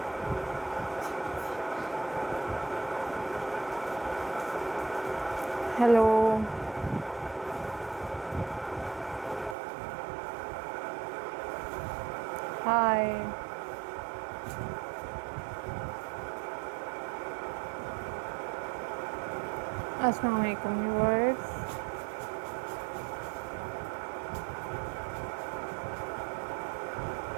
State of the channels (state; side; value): drops out; left; at 9.6 s